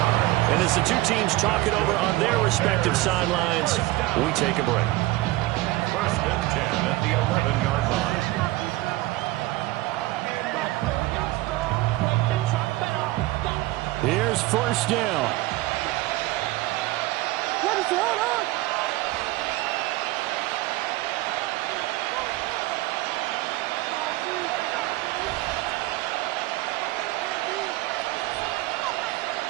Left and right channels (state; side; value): quieter; left; 18.8 dB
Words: And as the two teams talk it over on their respective sidelines, we take a break. 1st and 10 at the 11-yard line. Here's first down.